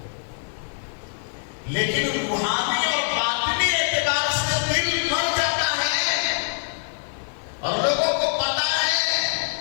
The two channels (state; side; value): silent; right; 63 dB below the other